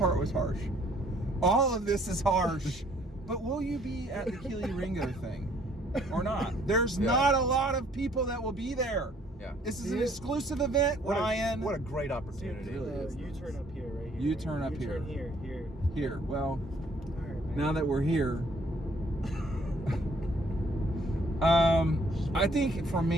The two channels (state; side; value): normal; both; correlation 0.62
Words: was harsh? All of this is harsh. But will you be at the Kelee Ringo thing or not? There's not a lot of people that will be there. Yeah. This is an exclusive event, Ryan. What a great opportunity. you turn up here, right here. You turn up here. You turn here. Here. Well, All right, man. now that we're here, I think for